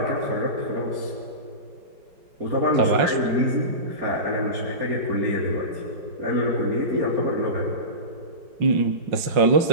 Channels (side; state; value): left; late; 5.5 ms